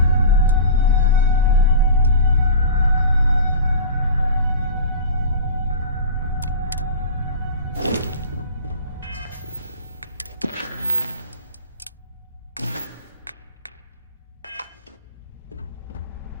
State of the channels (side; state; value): both; inverted; correlation -0.34